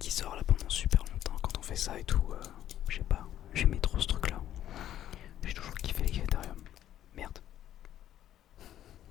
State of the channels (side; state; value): right; quieter; 11.8 dB